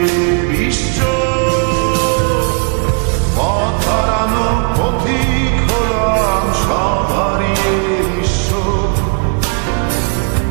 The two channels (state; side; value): quieter; left; 38.9 dB